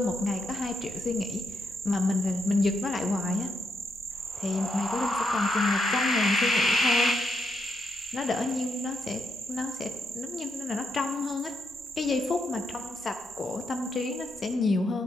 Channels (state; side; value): normal; both; correlation 0.80